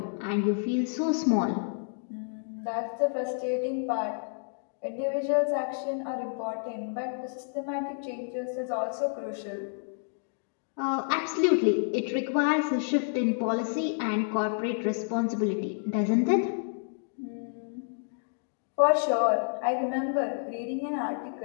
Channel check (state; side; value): silent; right; digital silence